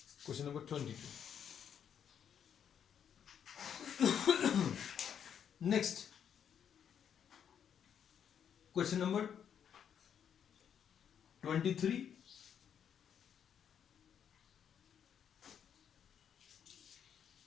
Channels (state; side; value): quieter; right; 8.4 dB